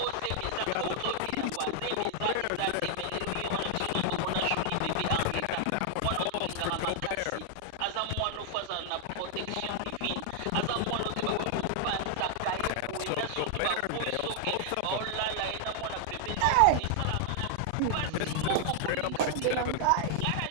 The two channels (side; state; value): both; different; correlation 0.00